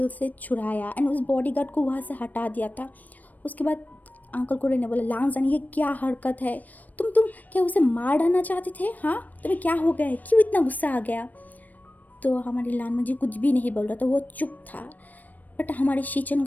से छुड़ाया एंड उस बॉडीगार्ड को वहाँ से हटा दिया था। उसके बाद अंकल कुरेन ने बोला, लांजन ये क्या हरकत है, तुम क्या उसे मार डालना चाहते थे। हाँ, तुम्हें क्या हो गया है, क्यों इतना गुस्सा आ गया। तो हमारे लांजन जी कुछ भी नहीं बोल रहा था, वो चुप था, बट हमारे शिचेन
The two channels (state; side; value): late; right; 0.082 ms